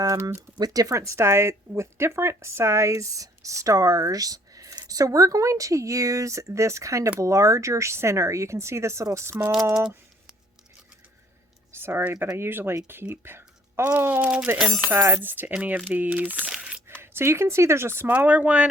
with different size stars. So we're going to use this kind of larger center. You can see this little small, sorry, but I usually keep all the insides to any of these. So you can see there's a smaller one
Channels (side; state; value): both; normal; correlation 0.60